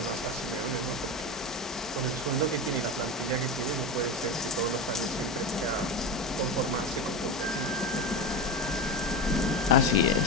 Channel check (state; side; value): normal; both; correlation 0.20